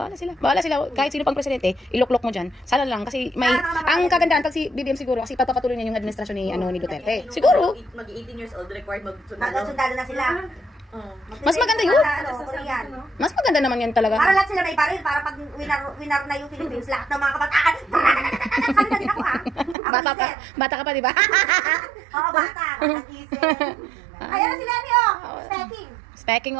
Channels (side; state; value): left; drops out; at 19.8 s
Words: sila. Bahala sila. Kahit sino pang presidente, iloklok mo dyan. Sana lang. Kasi may... Ang kagandaan pag si BBM siguro, kasi papapatuloy niya yung administrasyon ni, ni Duterte. Siguro. Mag-18 years old, required Hanggang mag-sundalo. sundalo na sila. Mas maganda yun. Ano, Korean. Mas maganda naman yan talaga. Para lahat sila may baril, para pag winner na yung Philippines, lahat ng mga kabataan. Sabi na din ako, ah. Ako Bata pa. isip. Bata ka pa, di ba? Oo, bata. Nag-isip. Ayan na si Lenny, oh. Stacking. Speaking